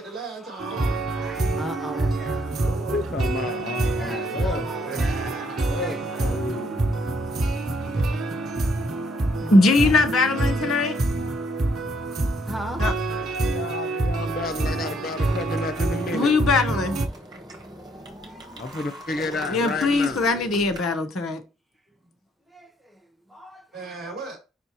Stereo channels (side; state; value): both; normal; correlation 0.69